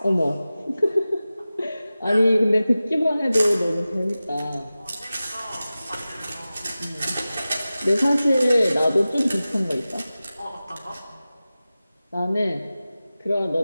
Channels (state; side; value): inverted; both; correlation -0.96